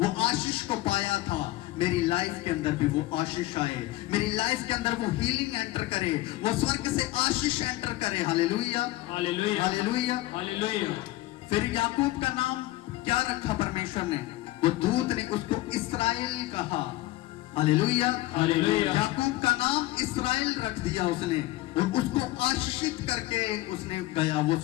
आशीष को पाया था, मेरी लाइफ के अंदर भी वो आशीष आए, मेरी लाइफ के अंदर वो हीलिंग एंटर करे, वो स्वर्ग से आशीष एंटर करे। Hallelujah, hallelujah, hallelujah, hallelujah. फिर याकूब का नाम क्या रखा परमेश्वर ने? वो दूत ने उसको इस्राएल कहा। Hallelujah, hallelujah. याकूब का नाम इस्राएल रख दिया उसने, और उसको आशीषित करके उसने गया वो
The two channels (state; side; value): quieter; right; 17.3 dB